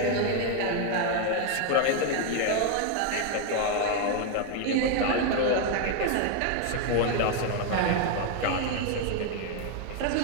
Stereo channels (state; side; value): different; both; correlation 0.01